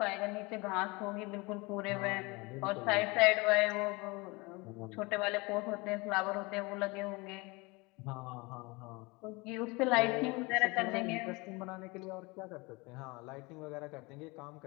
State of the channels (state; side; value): quieter; right; 25.6 dB